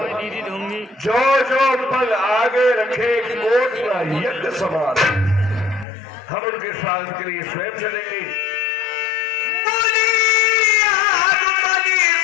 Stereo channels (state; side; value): drops out; right; at 5.9 s